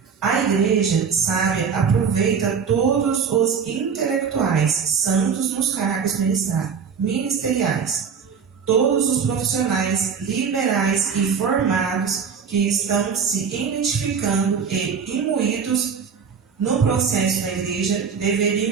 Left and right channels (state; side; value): quieter; left; 6.4 dB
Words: A igreja sábia aproveita todos os intelectuais, santos nos cargos ministeriais, todos os profissionais liberais e formados que estão se identificando e imbuídos no processo da igreja